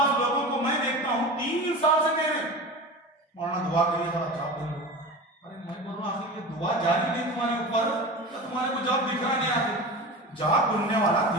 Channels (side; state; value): both; normal; correlation 0.31